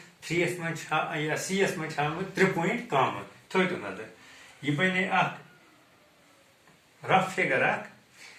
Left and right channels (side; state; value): both; identical; correlation 1.00